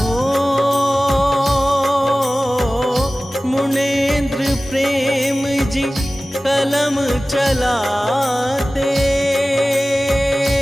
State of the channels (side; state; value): both; normal; correlation 0.97